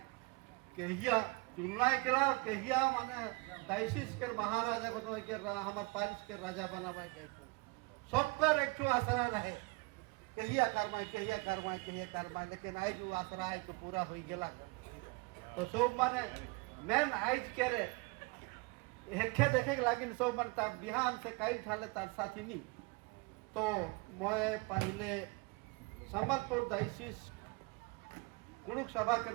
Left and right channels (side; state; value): left; quieter; 27.7 dB